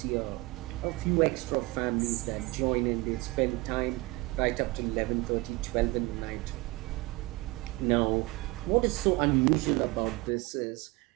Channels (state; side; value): quieter; left; 22.4 dB